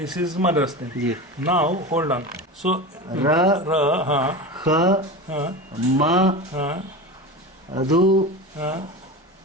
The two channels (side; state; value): both; normal; correlation 0.27